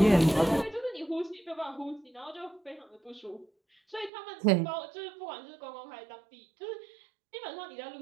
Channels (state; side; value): drops out; left; at 4.1 s